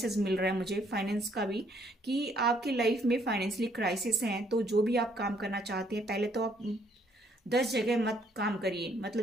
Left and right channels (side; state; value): both; normal; correlation 0.67